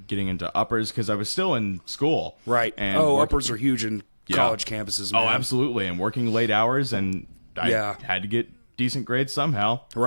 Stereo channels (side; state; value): both; inverted; correlation -1.00